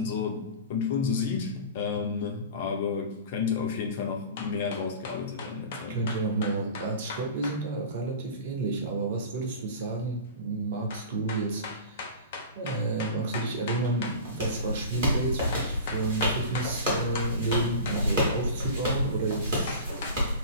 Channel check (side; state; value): both; inverted; correlation -0.35